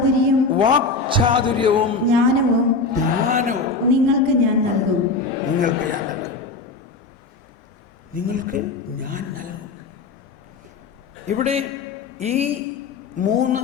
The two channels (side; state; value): right; quieter; 3.9 dB